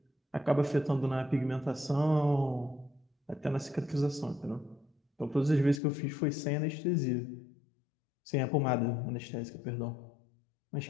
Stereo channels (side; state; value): right; drops out; at 5.8 s